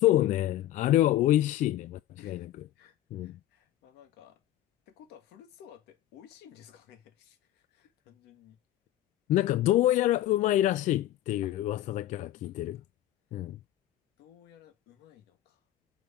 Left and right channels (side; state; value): right; quieter; 13.8 dB